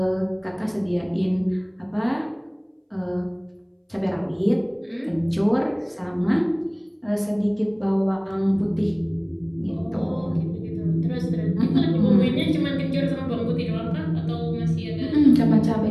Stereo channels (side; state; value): both; identical; correlation 1.00